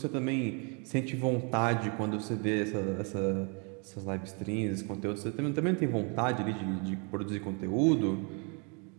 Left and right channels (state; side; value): quieter; left; 35.6 dB